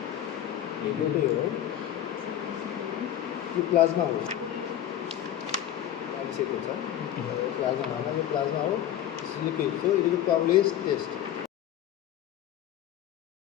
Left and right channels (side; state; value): right; quieter; 11.3 dB